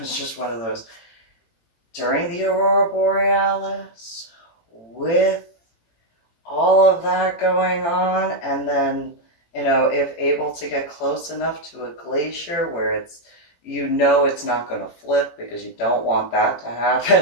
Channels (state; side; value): late; right; 18 ms